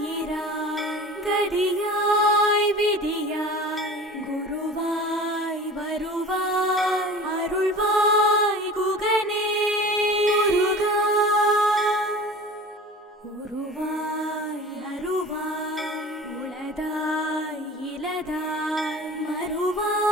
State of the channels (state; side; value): normal; both; correlation 0.39